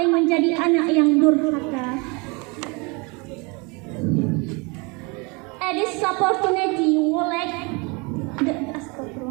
menjadi anak yang durhaka. At this opportunity, we would like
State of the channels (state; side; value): quieter; left; 29.5 dB